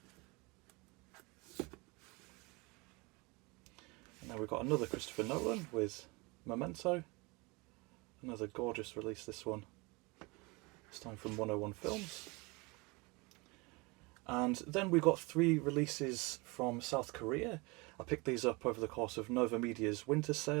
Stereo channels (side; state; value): left; quieter; 26.5 dB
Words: Now we've got another Christopher Nolan with Memento. Another gorgeous release, this one. This time from 101 Films. And then we've got 3 releases from South Korea. I picked these up over the course of Nova Media's winter